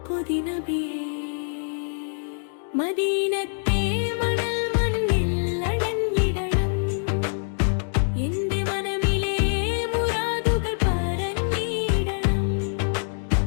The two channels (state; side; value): silent; right; digital silence